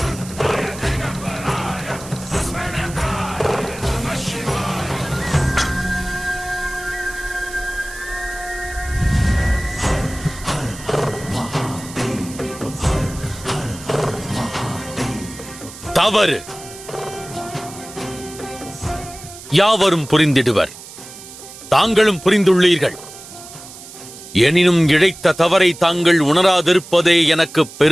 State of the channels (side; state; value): right; noise; hiss, 16 dB below the sound